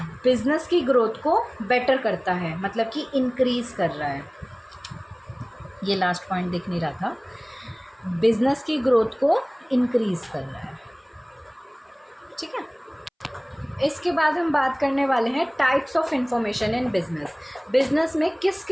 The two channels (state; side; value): identical; both; correlation 1.00